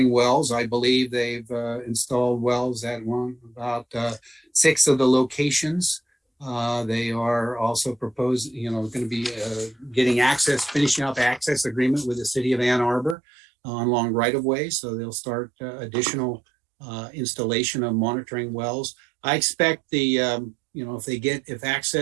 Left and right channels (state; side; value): drops out; left; at 13.2 s